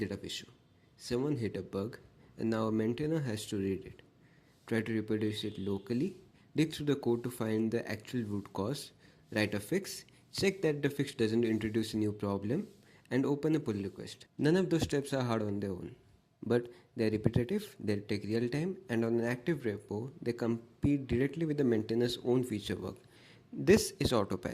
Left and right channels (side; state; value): both; identical; correlation 1.00